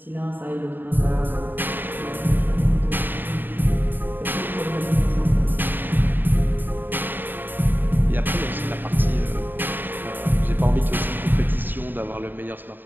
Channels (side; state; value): left; late; 0.093 ms